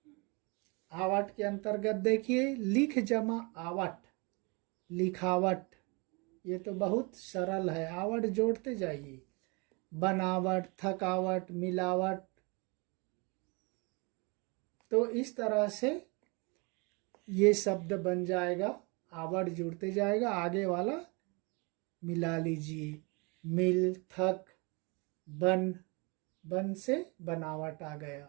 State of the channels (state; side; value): quieter; left; 30.0 dB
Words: आवट के अंतर्गत देखिए लिख जमा आवट, लिखावट। ये तो बहुत सरल है, आवट जोड़ते जाइए। बनावट, थकावट, मिलावट। तो इस तरह से ये शब्द बन जाएगा, आवट जुड़ते जाएगा, आगे वाला मिला लीजिए। मिल, थक, बन, बन से बनावट आ